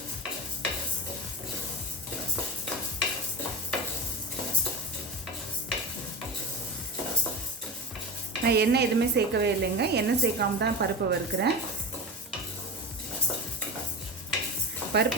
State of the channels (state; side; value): normal; both; correlation 0.27